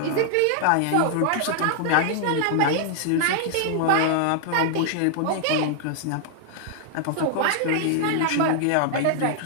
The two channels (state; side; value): different; both; correlation 0.00